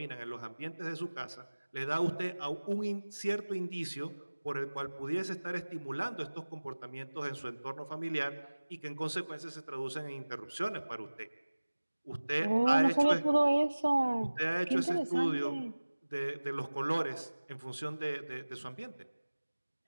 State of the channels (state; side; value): inverted; both; correlation -1.00